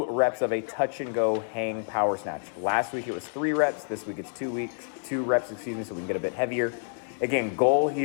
reps of a touch and go hang power snatch. Last week it was 3 reps. This week it's 2 reps, so we can get a bit heavier. Again, goal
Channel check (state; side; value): silent; right; 59 dB below the other